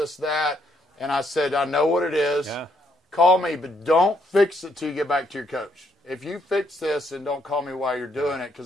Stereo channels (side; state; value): both; normal; correlation 0.73